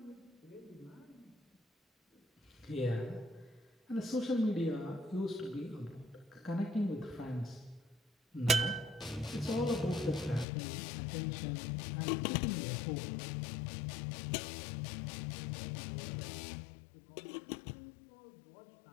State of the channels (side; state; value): right; drops out; at 10.5 s